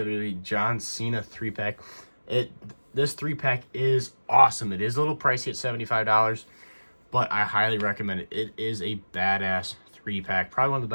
John Cena 3-pack. This 3-pack is awesome. It is a little pricey at $75, but I highly recommend it. It is a badass 3-pack. Probably one of the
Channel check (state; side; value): inverted; both; correlation -1.00